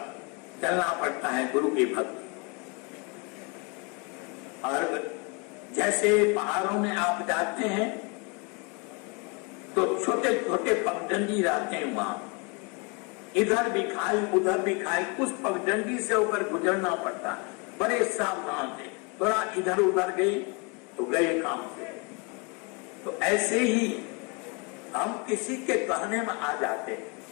चलना पड़ता है गुरु की भक्ति। और जैसे पहाड़ों में आप जाते हैं तो छोटे छोटे पगडंडी रहते हैं, वहां इधर भी खाई उधर भी खाई, उस पगडंडी से होकर गुजरना पड़ता है। बड़े सावधान से, थोड़ा इधर उधर गए तो गए काम से। तो ऐसे ही हम किसी के कहने में आ जाते हैं,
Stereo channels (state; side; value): quieter; right; 29.9 dB